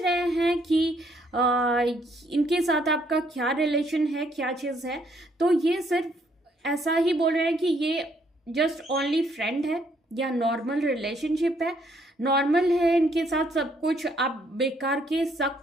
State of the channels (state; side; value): normal; both; correlation 0.69